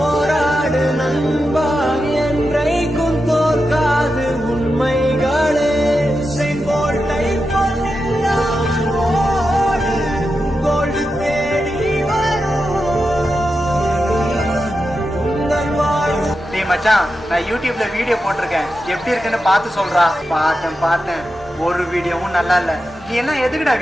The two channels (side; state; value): both; normal; correlation 0.89